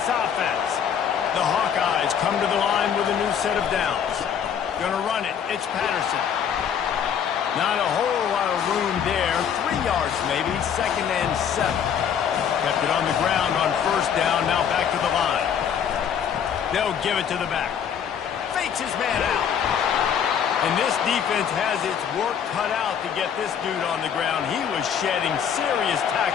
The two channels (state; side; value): quieter; right; 8.1 dB